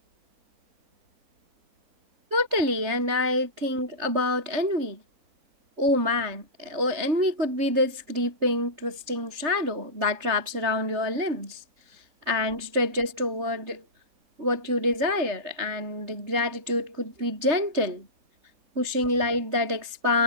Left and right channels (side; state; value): left; late; 3.3 ms